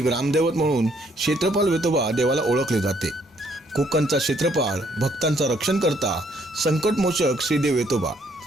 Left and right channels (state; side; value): normal; both; correlation 0.67